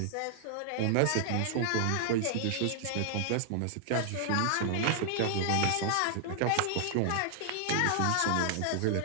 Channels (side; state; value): both; different; correlation 0.00